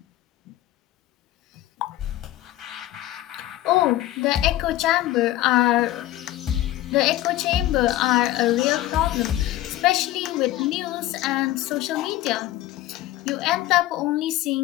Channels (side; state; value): right; quieter; 15.0 dB